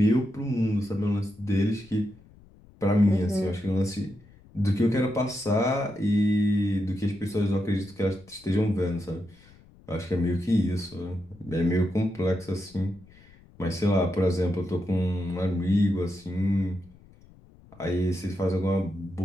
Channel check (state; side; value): noise; left; rumble, 25 dB below the sound